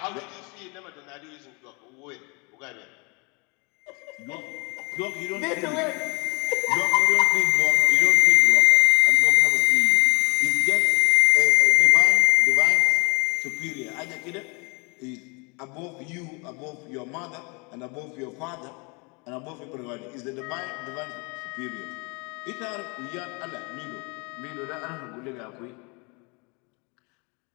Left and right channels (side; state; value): right; quieter; 30.8 dB